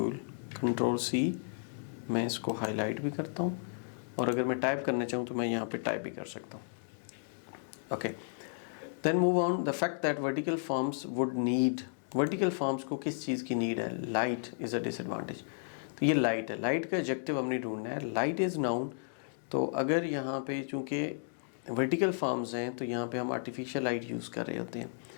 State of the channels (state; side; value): silent; right; digital silence